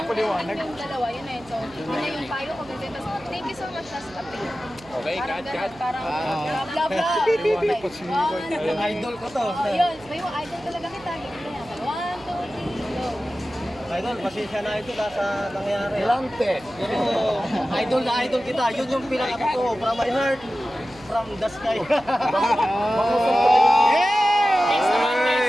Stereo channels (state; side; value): noise; right; hum, 23 dB below the sound